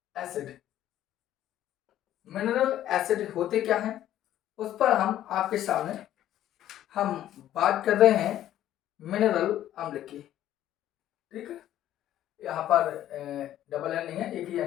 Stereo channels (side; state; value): right; quieter; 12.3 dB